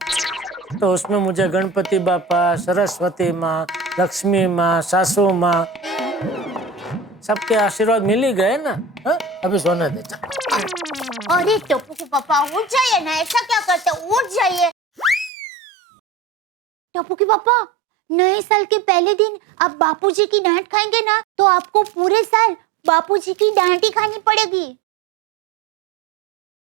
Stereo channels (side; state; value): left; drops out; at 15.3 s